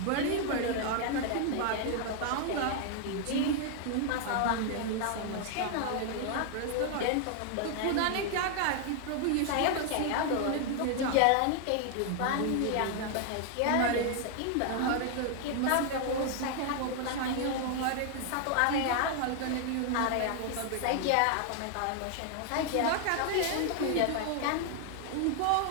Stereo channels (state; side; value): different; both; correlation 0.00